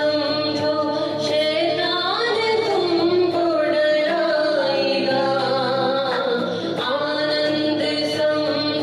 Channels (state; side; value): identical; both; correlation 1.00